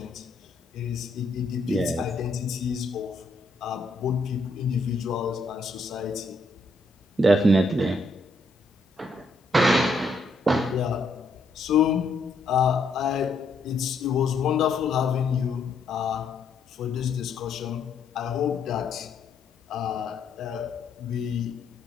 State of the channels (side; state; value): right; quieter; 3.0 dB